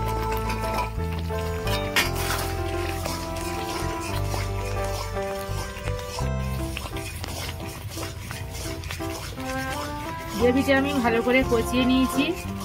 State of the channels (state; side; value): identical; both; correlation 1.00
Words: গ্রেভিটা আমি ভালো করে কষিয়ে নিয়েছি।